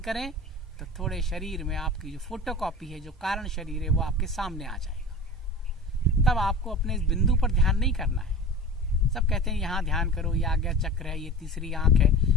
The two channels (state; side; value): normal; both; correlation 0.34